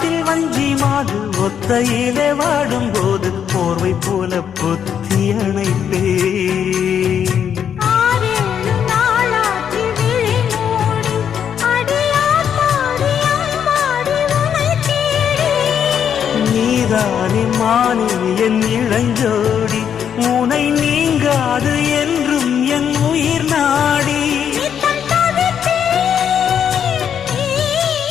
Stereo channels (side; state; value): right; quieter; 8.4 dB